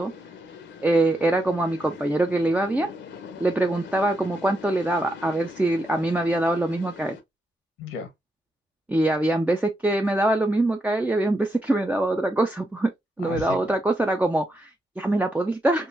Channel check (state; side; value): normal; both; correlation 0.82